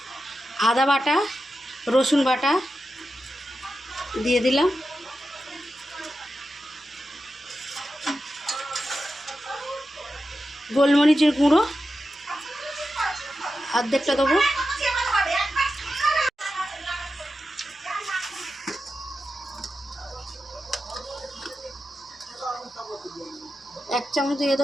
আদা বাটা, রসুন বাটা দিয়ে দিলাম। গোলমরিচের গুঁড়ো অর্ধেকটা দেবো। এক চামচ দিয়ে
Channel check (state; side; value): normal; both; correlation 0.90